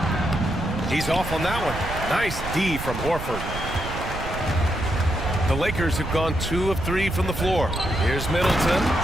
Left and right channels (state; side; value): noise; right; rumble, 8 dB below the sound